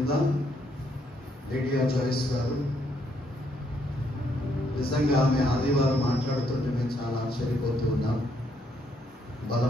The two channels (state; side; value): normal; both; correlation 0.73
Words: లిడియా జాయిస్ గారు, నిజంగా ఆమె ఆదివారం మాట్లాడుతుంటే మేము చాలా ఆశ్చర్యపోతూ ఉన్నాం.